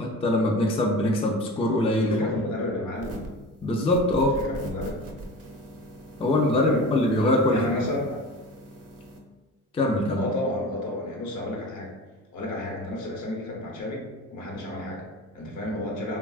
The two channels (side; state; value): both; normal; correlation 0.34